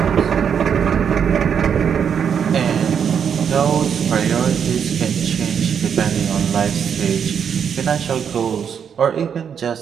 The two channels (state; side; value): quieter; left; 7.6 dB